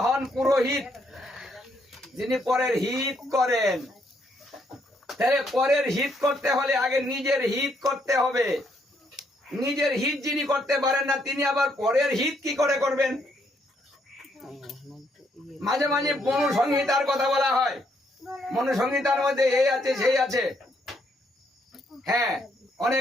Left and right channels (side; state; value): both; normal; correlation 0.73